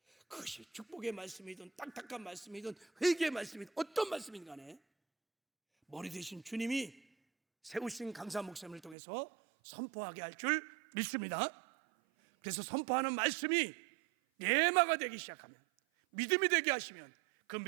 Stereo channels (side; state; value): left; drops out; at 9.0 s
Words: 그것이 축복의 말씀이든 딱딱한 말씀이든 회개의 말씀이든 어떤 말씀이든 간에 머리 대신 주님이 세우신 강사 목사님을 통해서 선포하게 할 줄 믿습니다. 그래서 선포하는 말씀이 예마가 되기 시작하면, 믿음이 되게 하시면 그